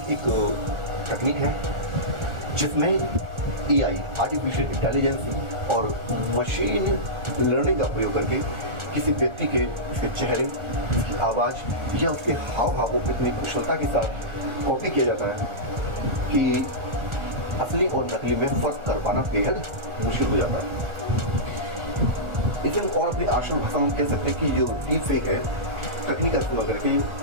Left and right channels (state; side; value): late; left; 1.4 ms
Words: एक तकनीक है जिसमें एआई आर्टिफिशियल इंटेलिजेंस और मशीन लर्निंग का प्रयोग करके किसी व्यक्ति के उसके चेहरे, उसकी आवाज़ या उसके हाव भावों को इतनी कुशलता के साथ कॉपी किया जाता है कि असली और नकली में फर्क कर पाना बेहद मुश्किल हो जाता है। इसे हम और अपनी आसान भाषा में कह सकते हैं कि जो डीप फेक है तकनीक का इस्तेमाल करके